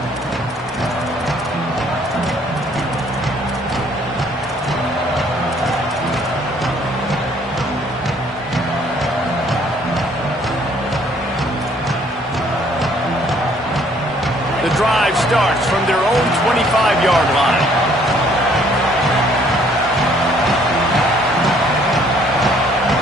The drive starts from their own 25-yard line.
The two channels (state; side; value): normal; both; correlation 0.62